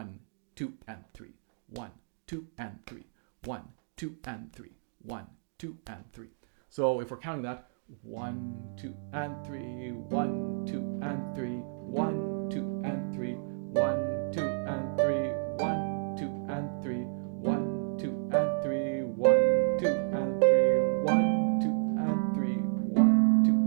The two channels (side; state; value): left; silent; digital silence